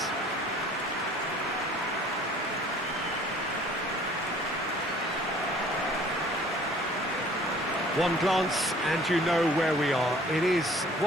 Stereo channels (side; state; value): both; normal; correlation 0.53